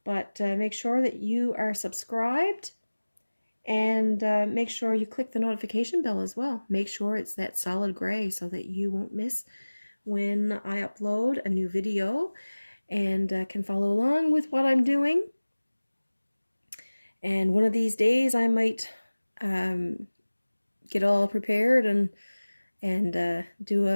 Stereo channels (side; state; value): both; inverted; correlation -1.00